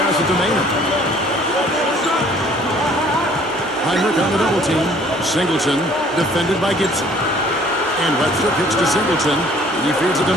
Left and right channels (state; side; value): normal; both; correlation 0.56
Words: it to Maynard. Heinrich on the double team. Singleton defended by Gibson. And Webster kicks to Singleton. He feeds it to